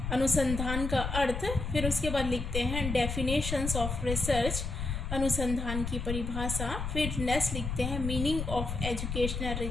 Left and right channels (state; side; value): noise; left; rumble, 4 dB below the sound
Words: अनुसंधान का अर्थ, फिर उसके बाद लिखते हैं डेफिनेशंस ऑफ रिसर्च, अनुसंधान की परिभाषा, फिर नेक्स्ट लिखते हैं मीनिंग ऑफ एजुकेशनल